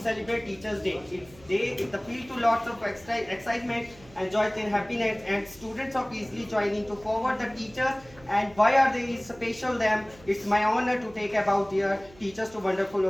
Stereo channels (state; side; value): noise; right; hum, 24 dB below the sound